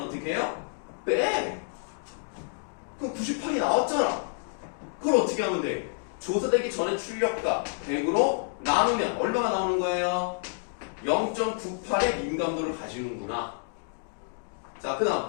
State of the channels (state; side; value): silent; right; digital silence